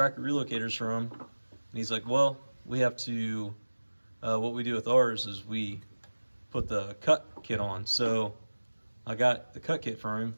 relocators from, and he's like, well, we have to, what we do with ours is we put the cut kit on. So I got the cut kit from him.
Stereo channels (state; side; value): inverted; both; correlation -1.00